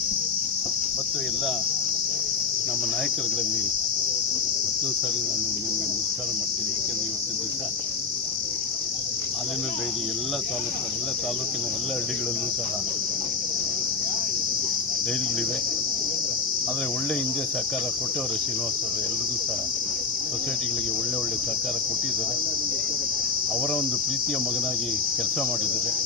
ಮತ್ತು ಎಲ್ಲ ನಮ್ಮ ನಾಯಕರುಗಳಲ್ಲಿ ಮತ್ತೊಂದು ಸಾರಿ ನಾನು ನಿಮಗೆ ನಮಸ್ಕಾರ ಮಾಡ್ತೀನಿ. ಏಕೆಂದರೆ ಇವತ್ತಿನ ದಿವಸ ಹಾಲಿನ ಡೈರಿ ಎಲ್ಲ ತಾಲೂಕಿನ ಎಲ್ಲ ಹಳ್ಳಿಗಳಲ್ಲೂ ಸಹ ಡೈರಿಗಳಿವೆ. ಆದರೆ ಒಳ್ಳೆ ಹಿಂದೆ ಸಹಕಾರ ಕೊಟ್ಟವರು ಶ್ರೀನಿವಾಸ್ ಅವರು. ಎಲ್ರಿಗೂ ಸಹ ಸೊಸೈಟಿಗಳಿಗೆ ಒಳ್ಳೆ ಸಹಕಾರ ಕೊಟ್ಟಿದ್ದಾರೆ. ಅವರ ಒಂದು ಪ್ರೀತಿಯ ಮಗನಾಗಿ ಕೆಲಸ ಮಾಡಿದ್ದಾರೆ.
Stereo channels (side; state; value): right; quieter; 5.1 dB